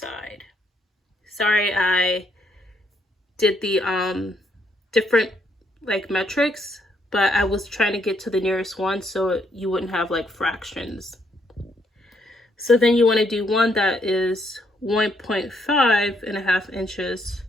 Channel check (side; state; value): both; normal; correlation 0.73